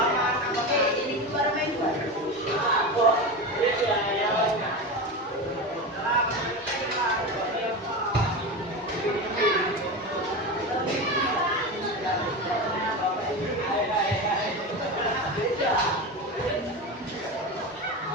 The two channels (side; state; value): both; normal; correlation 0.23